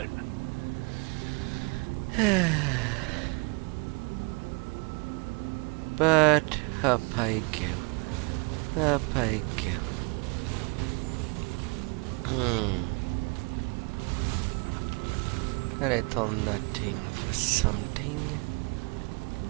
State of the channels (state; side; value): quieter; left; 32.1 dB